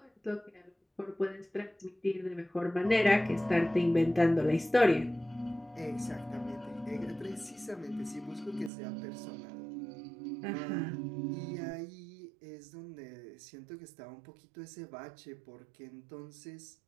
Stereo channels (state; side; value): drops out; left; at 8.7 s